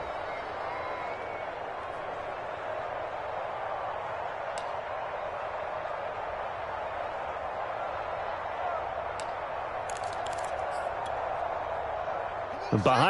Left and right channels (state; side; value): identical; both; correlation 1.00